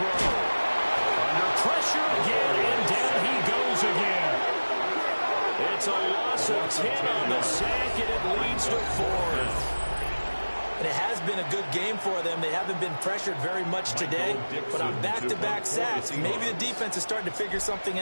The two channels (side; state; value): both; inverted; correlation -1.00